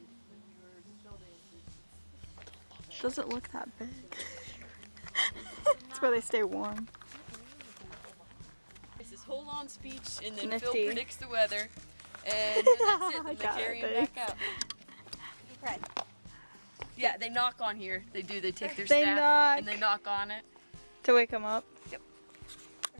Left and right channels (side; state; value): both; inverted; correlation -1.00